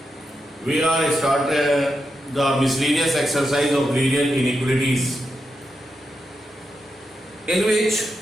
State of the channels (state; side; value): normal; both; correlation 0.86